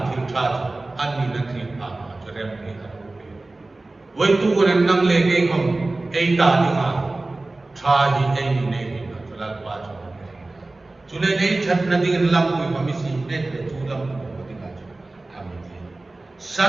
Tintat Anni Nakri Ama Jerem Hikarupi Waitu Kuran Nang Lege Hom Eita Dima Trahi Eni Negi Natural Bajo Zulay Eitat Nading Lampu Pamisi Net Tulam Padigajo Amiti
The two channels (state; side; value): quieter; left; 3.0 dB